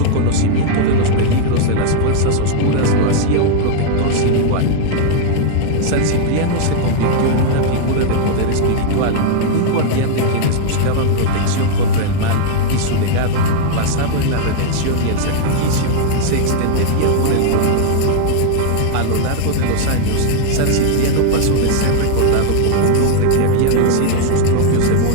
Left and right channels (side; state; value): both; different; correlation 0.00